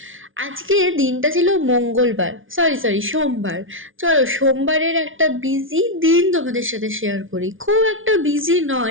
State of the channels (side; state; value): left; late; 0.57 ms